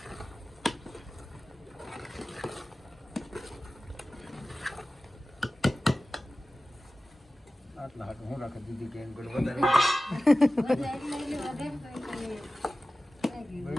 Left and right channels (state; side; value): normal; both; correlation 0.96